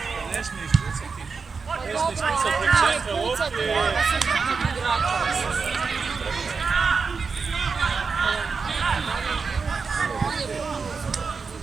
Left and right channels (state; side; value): quieter; left; 5.0 dB